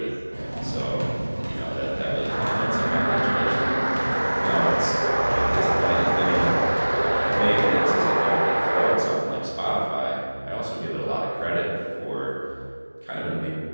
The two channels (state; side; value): inverted; both; correlation -1.00